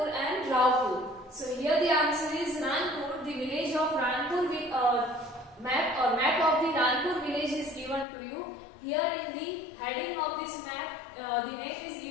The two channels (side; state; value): right; drops out; at 8.1 s